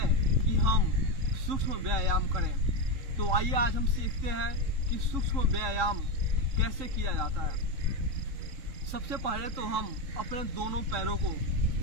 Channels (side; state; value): left; late; 3.7 ms